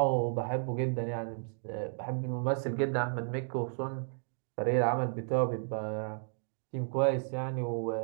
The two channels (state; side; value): silent; left; digital silence